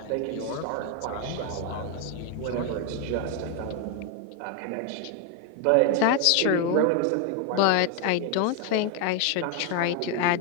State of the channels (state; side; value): different; both; correlation 0.01